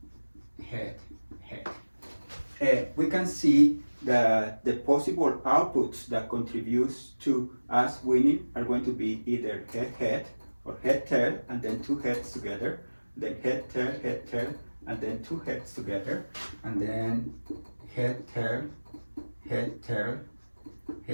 head, head. We can see that the possible outputs that contributes to us winning are going to be either head, head, or head, tail, and then 2 heads together, then head, tail, and then 2 heads together, and then head, tail, head,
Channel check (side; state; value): both; inverted; correlation -1.00